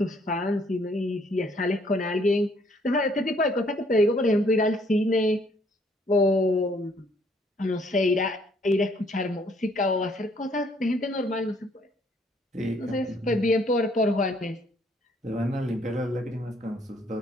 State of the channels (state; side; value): normal; both; correlation 0.65